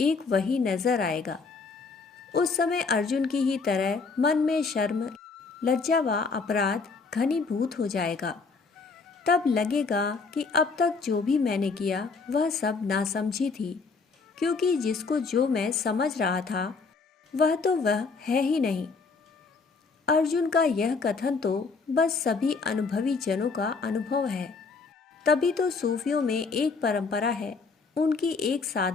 एक वही नजर आएगा। उस समय अर्जुन की ही तरह मन में शर्म, लज्जा व अपराध घनीभूत हो जाएगा। तब लगेगा कि अब तक जो भी मैंने किया वह सब नासमझी थी, क्योंकि जिसको जो मैं समझ रहा था वह तो वह है ही नहीं। अर्जुन का यह कथन तो बस सभी अनुभवी जनों का अनुभव है। तभी तो सूफियों में एक परंपरा है, उनकी एक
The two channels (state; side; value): quieter; right; 4.5 dB